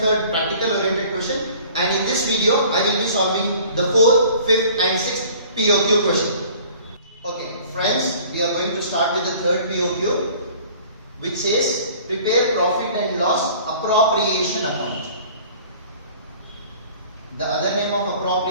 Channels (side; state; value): both; inverted; correlation -0.50